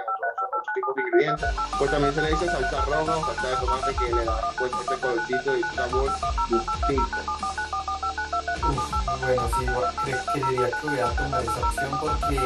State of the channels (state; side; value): identical; both; correlation 1.00